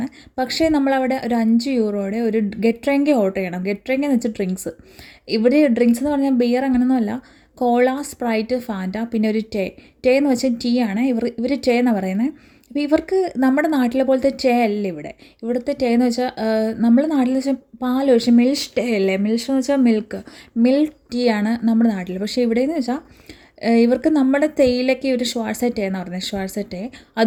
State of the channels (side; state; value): both; identical; correlation 1.00